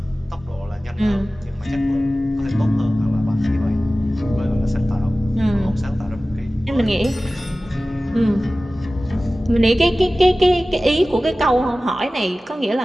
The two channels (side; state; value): both; normal; correlation 0.96